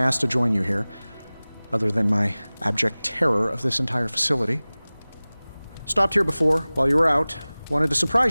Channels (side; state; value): both; inverted; correlation -0.99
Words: asked to join you here, other than my abject terror of this entire facility. Stopped here before, while you were out. Wanted to